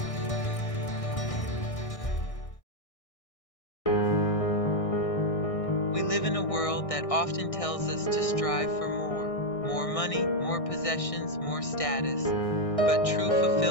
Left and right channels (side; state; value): right; late; 1.6 ms